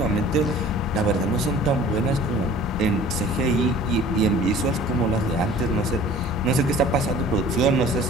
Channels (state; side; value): normal; both; correlation 0.47